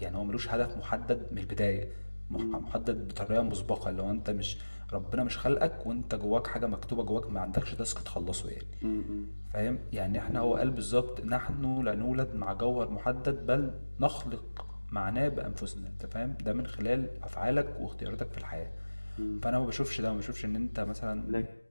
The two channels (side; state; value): both; inverted; correlation -1.00